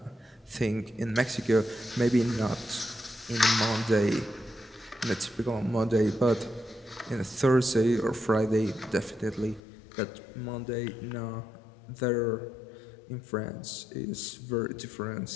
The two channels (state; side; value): drops out; right; at 9.6 s